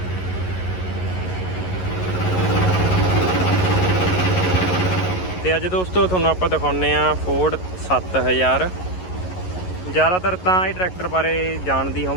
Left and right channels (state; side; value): late; right; 11 ms